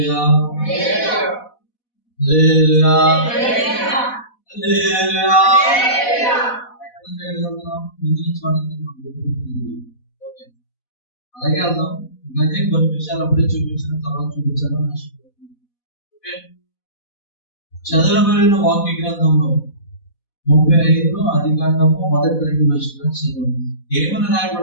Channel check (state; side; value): late; right; 4.1 ms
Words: హల్లెలూయా హల్లెలూయా. అలాగే వెళ్దాం. అలాగే కొన్ని విషయాలు అప్పుడే చూపించిన తర్వాత చూపించాలని ఆశపడుతున్నాను. ఓకే, చదవబడిన వాక్య గ్రంథంలో 35 ఆదికాండము 1-2 వచనాలు చదువు. ఏమని